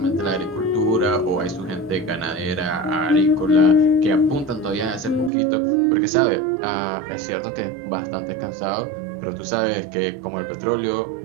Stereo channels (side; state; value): left; drops out; at 5.3 s